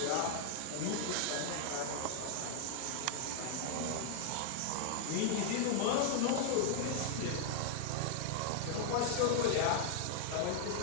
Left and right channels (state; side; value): different; both; correlation -0.01